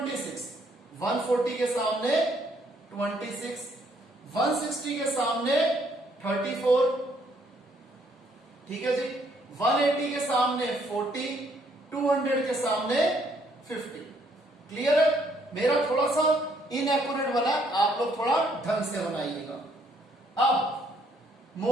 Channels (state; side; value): normal; both; correlation 0.68